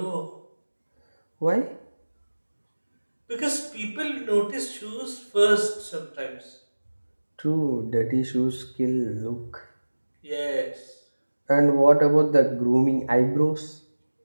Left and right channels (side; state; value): both; inverted; correlation -1.00